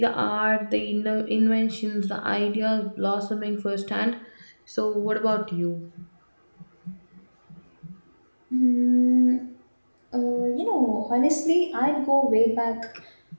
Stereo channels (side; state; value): both; inverted; correlation -1.00